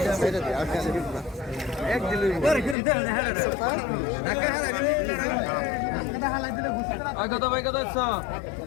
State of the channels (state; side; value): drops out; right; at 2.8 s